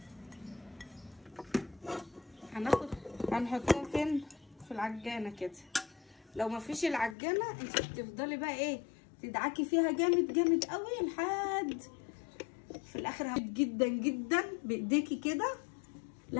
هنحطهم فين؟ في العجانه كده. لو مفيش العجانه انت بتفضلي بقى ايه تدعكي فيها جامد جامد قوي لحد في الاخر جدا جدا بايديكي كده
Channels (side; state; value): right; drops out; at 7.2 s